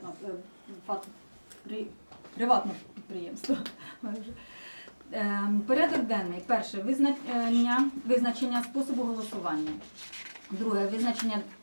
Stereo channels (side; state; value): both; inverted; correlation -1.00